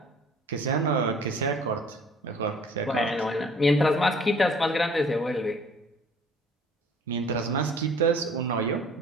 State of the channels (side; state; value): both; normal; correlation 0.52